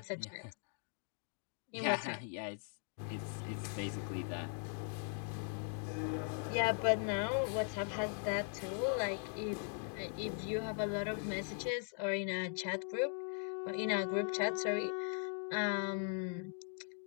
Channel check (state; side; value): silent; right; 51 dB below the other